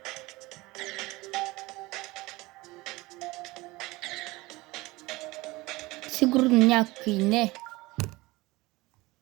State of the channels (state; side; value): quieter; left; 21.1 dB